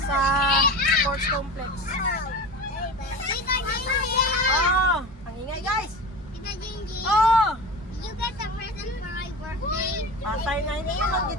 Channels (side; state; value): both; normal; correlation 0.30